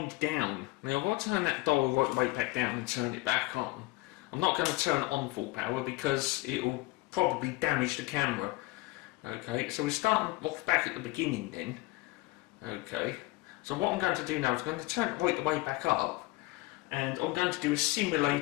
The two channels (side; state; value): right; quieter; 20.8 dB